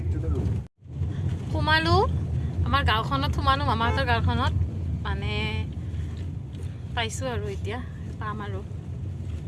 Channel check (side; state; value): both; identical; correlation 1.00